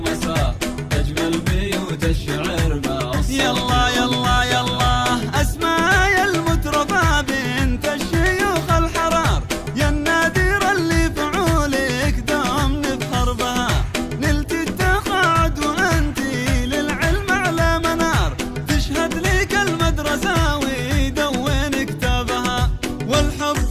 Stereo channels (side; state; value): both; identical; correlation 1.00